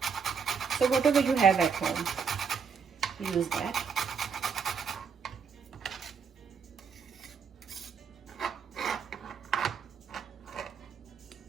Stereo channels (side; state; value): left; quieter; 6.2 dB